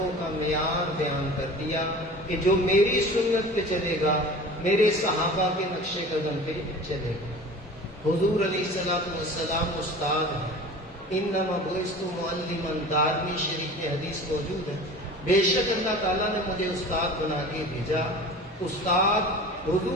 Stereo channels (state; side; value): normal; both; correlation 0.38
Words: کا معیار بیان کر دیا کہ جو میری سنت پہ چلے گا، میرے صحابہ کے نقش قدم پہ چلے گا۔ حضور علیہ الصلوۃ والسلام استاد ہیں، انما بعثت معلما، دارمی شریف میں حدیث موجود ہے، بے شک اللہ تعالیٰ نے مجھے استاد بنا کے بھیجا۔ استاد